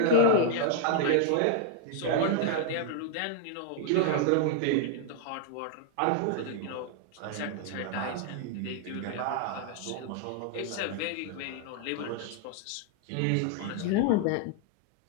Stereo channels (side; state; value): both; different; correlation 0.00